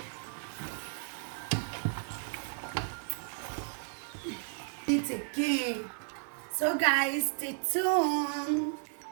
It again. So guys, stay tuned.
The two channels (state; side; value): silent; left; 55 dB below the other